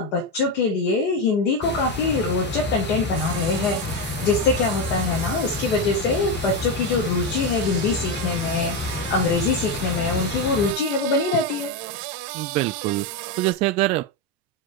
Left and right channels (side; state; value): both; normal; correlation 0.10